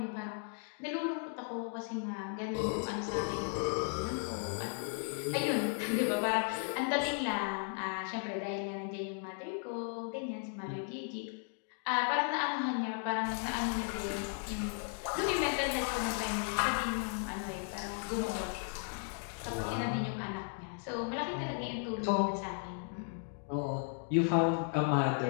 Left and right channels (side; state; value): right; silent; 54 dB below the other